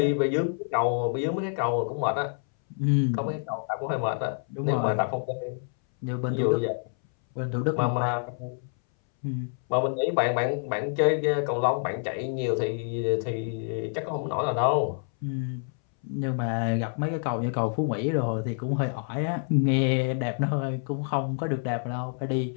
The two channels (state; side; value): silent; right; 60 dB below the other